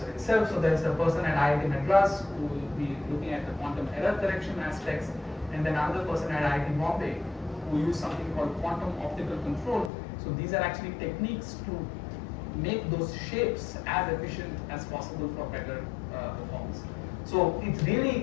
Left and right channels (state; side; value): drops out; right; at 9.9 s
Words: itself. So there's a person at IIT Madras who will be looking at the quantum error correction aspects, and then another person at IIT Bombay who use something called quantum optical control. So these are actually techniques to make those shapes as efficient as possible for better performance. So it's